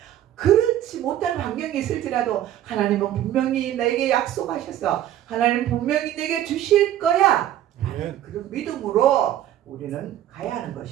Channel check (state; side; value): quieter; left; 12.2 dB